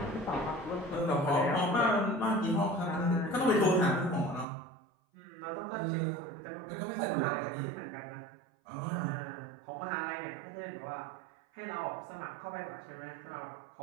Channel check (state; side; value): drops out; left; at 4.5 s